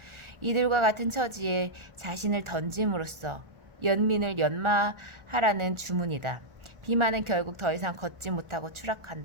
이들과 같은 처지에 자신을 던짐으로써 연민을 연마하라는 주문이다. 비마는 결국 더 이상 걷지 못하고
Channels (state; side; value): late; left; 1.4 ms